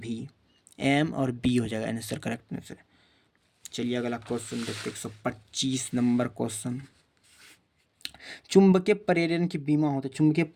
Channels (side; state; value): both; identical; correlation 1.00